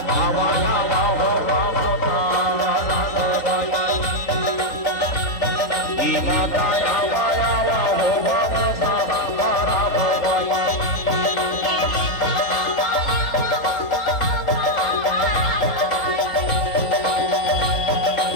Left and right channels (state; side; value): late; right; 3.9 ms